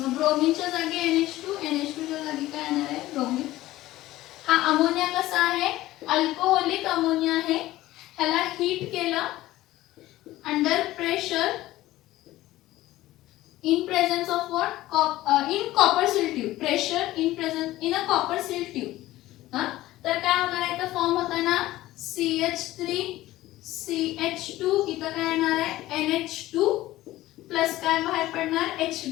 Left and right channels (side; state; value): right; quieter; 16.3 dB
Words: ब्रोमीनच्या जागी NH2 NH2च्या जागी काय येणार आहे ब्रोमीन. हा अमोनिया कसा आहे अल्कोहोलिक अमोनिया आहे. ह्याला हीट केलं under pressure in presence of what in copper seal tube. pressure in presence in a copper seal tube. हा तर काय होणार आहे तर फॉर्म होता ना CH3 CH2 इथं काय येणार आहे NH2 प्लस काय बाहेर पडणार